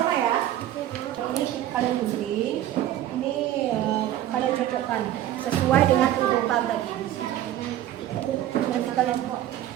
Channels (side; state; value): left; quieter; 12.7 dB